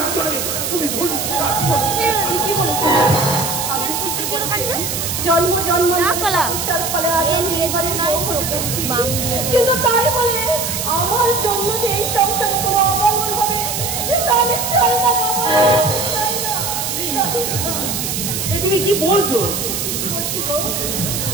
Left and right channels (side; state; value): right; noise; hiss, 3 dB below the sound